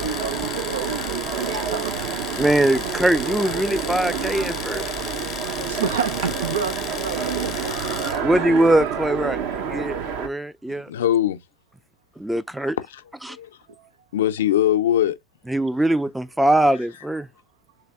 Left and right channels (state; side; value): normal; both; correlation 0.48